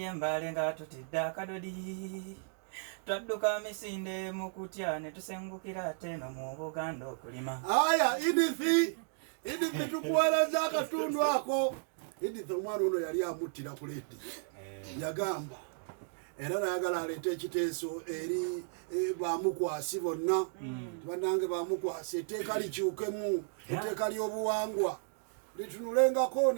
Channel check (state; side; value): silent; left; digital silence